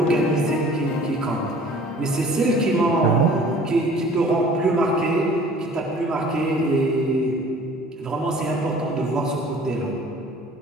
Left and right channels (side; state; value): both; normal; correlation 0.49